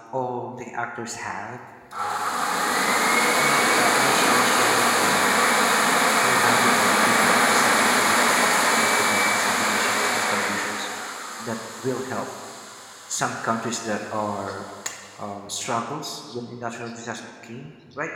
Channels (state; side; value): identical; both; correlation 1.00